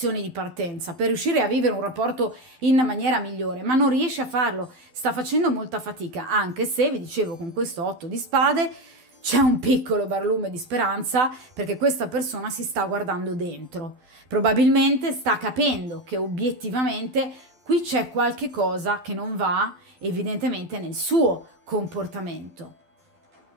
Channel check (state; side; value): late; left; 12 ms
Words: di partenza per riuscire a vivere un rapporto in maniera migliore, ma non riesce a farlo, sta facendo molta fatica, anche se, vi dicevo, con questo otto di spade c'è un piccolo barlume di speranza, perché questa persona si sta guardando dentro, probabilmente sta capendo che obiettivamente qui c'è qualche cosa che non va evidentemente nel suo comportamento.